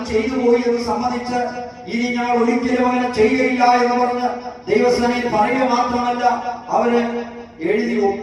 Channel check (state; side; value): identical; both; correlation 1.00